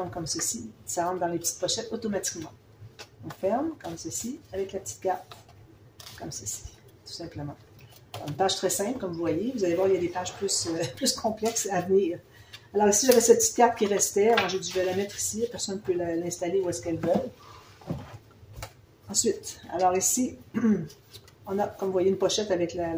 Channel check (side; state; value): both; identical; correlation 1.00